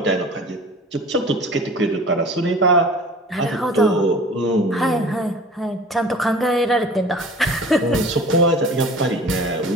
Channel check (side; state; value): both; normal; correlation 0.42